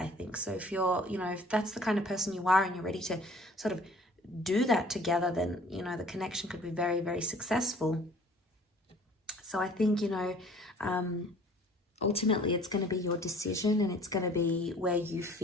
think. So if you're, you know, if that's the kind of person you are and you're ready to sort of do that together, then, you know, the connection could be very, very successful. So I think, you know, ultimately it's going to be your decision, and it's going to be where you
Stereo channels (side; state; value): both; normal; correlation 0.52